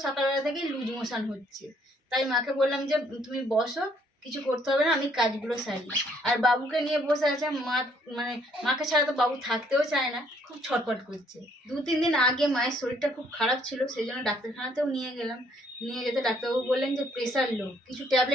সকালবেলা থেকেই লুজ মোশন হচ্ছে। তাই মাকে বললাম যে তুমি বসো, কিছু করতে হবে না, আমি কাজগুলো সারি। আর বাবুকে নিয়ে বসে আছে। মানে মাকে ছাড়া তো বাবু থাকতেও চায় না, খুব ছটফট করছে। 2-3 দিন আগে মায়ের শরীরটা খুব খারাপ ছিল, সেই জন্য ডাক্তারখানাতেও নিয়ে গেলাম। নিয়ে যেতে ডাক্তারবাবু বললেন যে প্রেশার লো, কিছু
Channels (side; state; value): both; normal; correlation 0.66